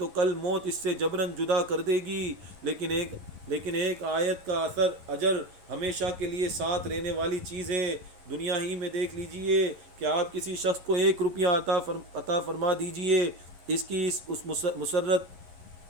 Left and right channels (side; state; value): left; late; 11 ms